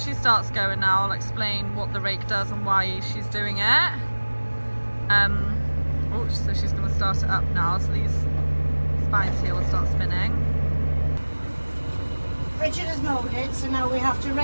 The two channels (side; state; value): both; inverted; correlation -1.00